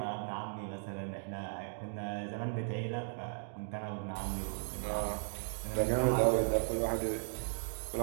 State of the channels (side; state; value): left; silent; digital silence